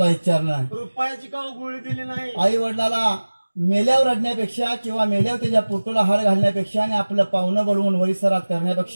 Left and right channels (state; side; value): inverted; both; correlation -1.00